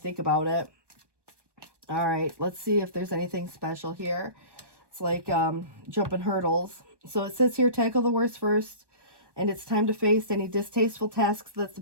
about it. All right, let's see if there's anything special here. It's like jumping hurdles. So it says here, tackle the worst first, and it's time to face any distasteful tasks that's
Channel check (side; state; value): left; late; 1.2 ms